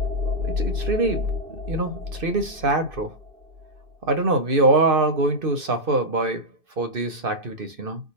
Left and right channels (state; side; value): late; left; 2.6 ms